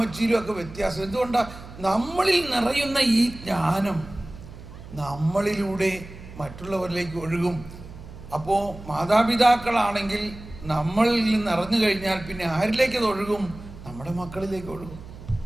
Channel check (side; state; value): right; noise; hum, 16 dB below the sound